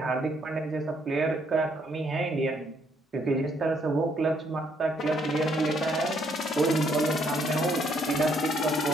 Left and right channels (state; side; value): normal; both; correlation 0.70